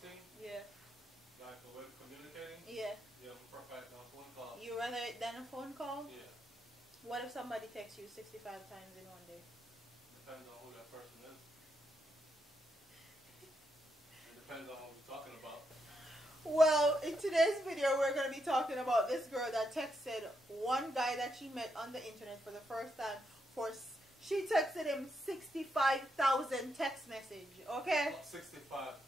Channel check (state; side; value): normal; both; correlation 0.81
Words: Yeah. Like a way of communicating? Yeah. Yeah, I prefer it than a phone call. You rather it than a phone call? Yeah. What if somebody texts you 65 times in one day? Depends on who that person is. It depends on what we're talking about. Well, in today's video, we're going to be talking about this girl that texted one guy that she met on the internet for the first time. She texted him 65,000 text message, okay?